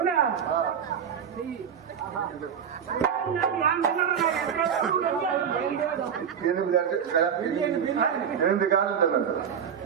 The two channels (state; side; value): quieter; left; 7.8 dB